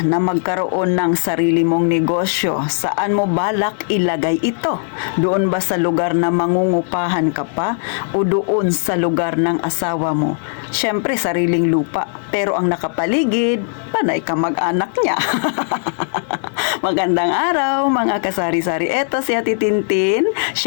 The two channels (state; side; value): silent; right; 64 dB below the other